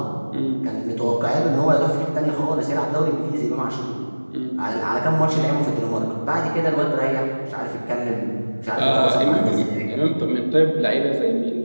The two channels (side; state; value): both; inverted; correlation -1.00